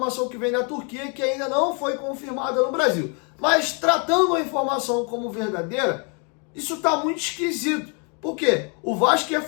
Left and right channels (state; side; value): quieter; right; 36.3 dB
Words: que vem da Turquia, que ainda não foi confirmada no Brasil. Mas tratando a informação como verdadeira, isso está muito esquisito. Por quê? O Vasco ia